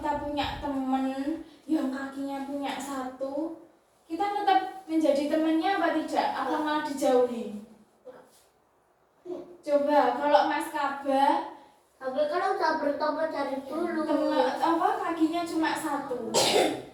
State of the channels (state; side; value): identical; both; correlation 1.00